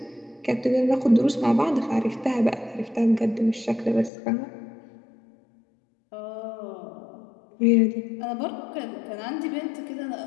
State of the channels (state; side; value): drops out; right; at 4.1 s